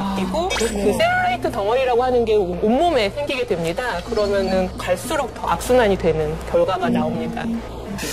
그 셀룰라이트 덩어리라고 하는 게 온몸에 생기게 됩니다. 그러면은 갈수록 더 악순환이 되는 결과가 나옵니다.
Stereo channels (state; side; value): identical; both; correlation 1.00